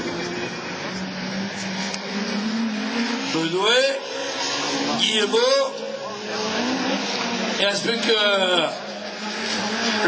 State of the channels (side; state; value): both; identical; correlation 1.00